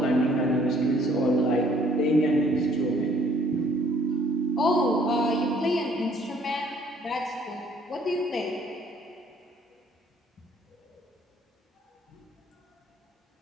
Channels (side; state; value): both; normal; correlation 0.60